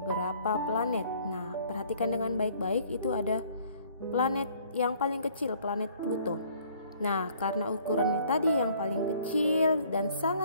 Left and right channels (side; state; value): both; inverted; correlation -0.58